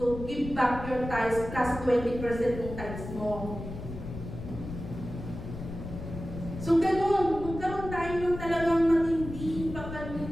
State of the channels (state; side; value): noise; left; rumble, 9 dB below the sound